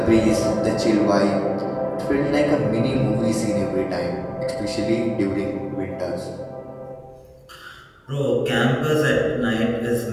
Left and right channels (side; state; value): both; identical; correlation 1.00